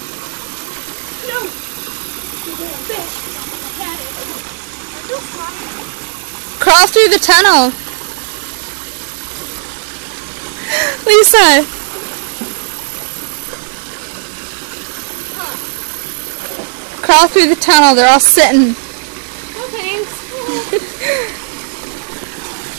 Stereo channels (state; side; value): silent; left; digital silence